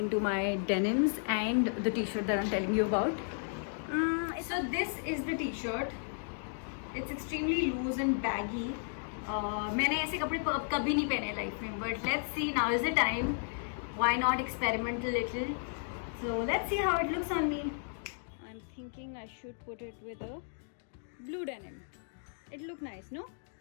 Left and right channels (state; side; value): silent; right; digital silence